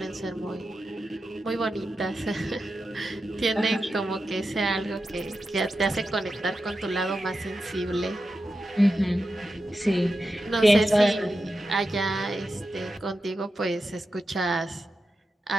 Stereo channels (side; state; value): both; normal; correlation 0.90